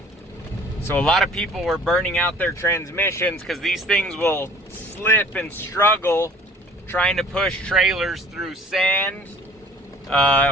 So a lot of people were burning out their transmissions because these things will slip and struggle trying to push trailers through sand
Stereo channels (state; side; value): normal; both; correlation 0.50